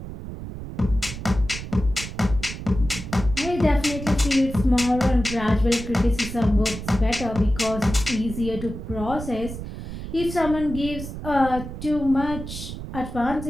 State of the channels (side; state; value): right; noise; rumble, 9 dB below the sound